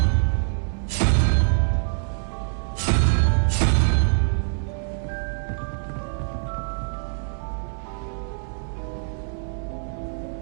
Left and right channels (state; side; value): silent; left; digital silence